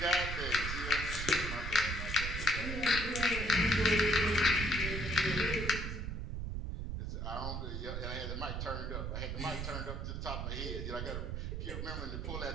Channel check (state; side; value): noise; right; rumble, 4 dB below the sound